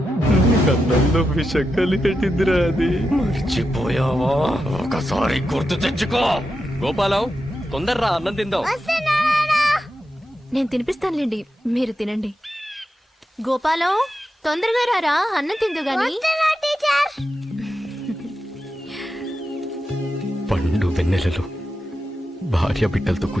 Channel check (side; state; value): both; normal; correlation 0.88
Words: కన్నంలో విషం కలిగట్టిందిరా అది. మర్చిపోయావా? ఒకసారి గుర్తు తెచ్చుకో. గోపాలం, తొందరరా, అన్నం తిందాం. నేను తినిపిస్తానులేండి, మీరు తినండి. గోపాలం, తొందరగా రారా, అన్నం తిందు గాని. పండు వెన్నెలలో భార్య బిడ్డలతో